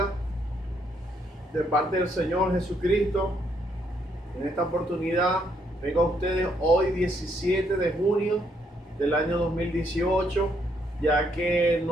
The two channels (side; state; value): both; normal; correlation 0.73